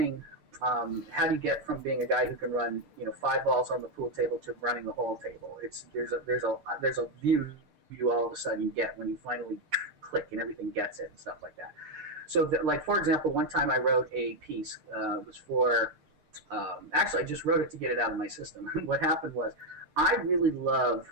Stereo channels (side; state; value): left; late; 6.6 ms